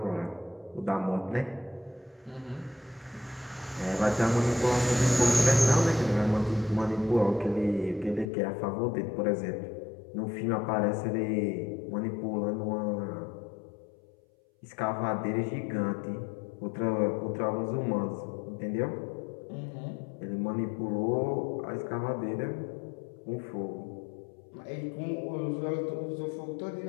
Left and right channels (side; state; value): right; drops out; at 8.3 s